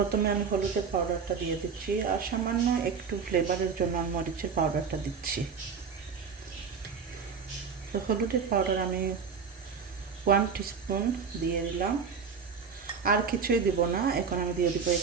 আমি হলুদের পাউডারটা দিয়ে দিচ্ছি, আর সামান্য একটু ফ্লেভারের জন্য আমি মরিচের পাউডারটা দিচ্ছি। তো হলুদের পাউডার আমি 1 টিস্পুন দিয়ে দিলাম, আর কিছুই দিব না। এখন আমি দিয়ে দিব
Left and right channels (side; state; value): left; quieter; 6.0 dB